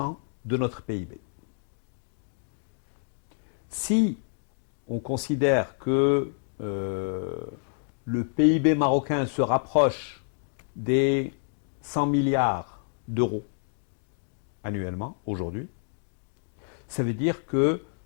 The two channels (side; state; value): right; silent; digital silence